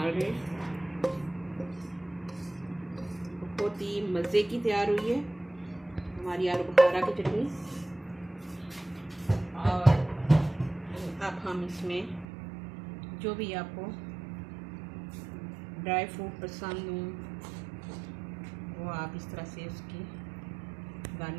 रहे हैं। बहुत ही मज़े की तैयार हुई है हमारी आलू बुखारा की चटनी। और अब हम इसमें जो भी आपको ड्राई फ्रूट पसंद हो वो आप इस तरह से उसकी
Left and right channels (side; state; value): left; drops out; at 12.2 s